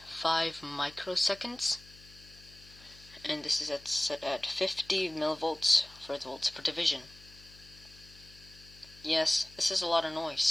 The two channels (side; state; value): left; noise; hum, 22 dB below the sound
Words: And this is set at 50 millivolts for the volts per division. Yes, this is a lot of